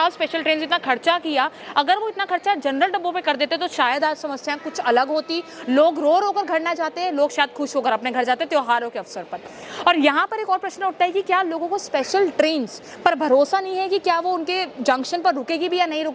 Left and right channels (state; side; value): identical; both; correlation 1.00